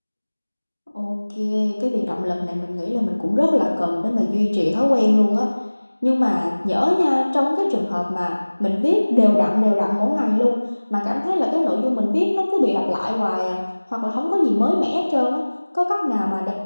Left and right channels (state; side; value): inverted; both; correlation -1.00